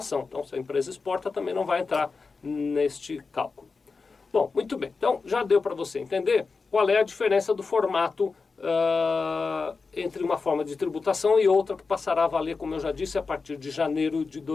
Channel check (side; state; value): right; quieter; 4.5 dB